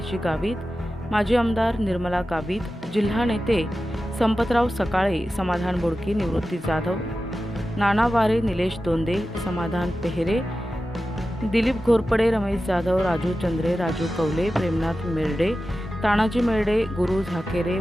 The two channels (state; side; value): normal; both; correlation 0.93